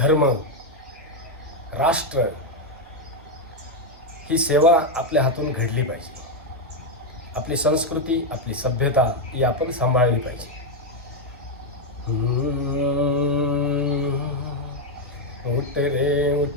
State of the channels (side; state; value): both; normal; correlation 0.03